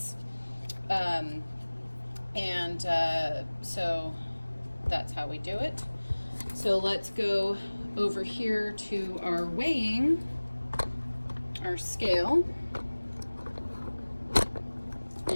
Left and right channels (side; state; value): both; inverted; correlation -1.00